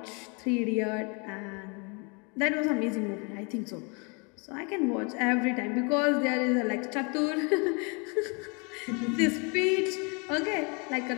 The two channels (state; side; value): quieter; right; 32.8 dB